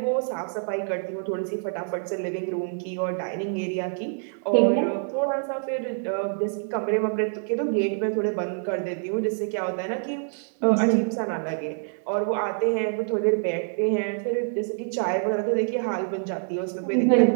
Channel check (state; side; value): silent; left; digital silence